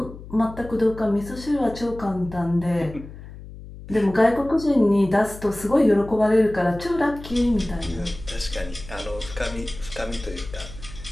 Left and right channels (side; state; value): left; noise; hum, 15 dB below the sound